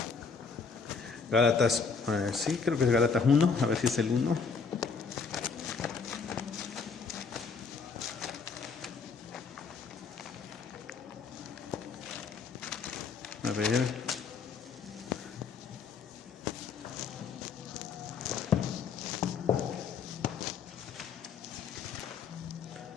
Gálatas, sí, creo que es Gálatas 1, a ver si es el 1. A ver.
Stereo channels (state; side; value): quieter; right; 5.3 dB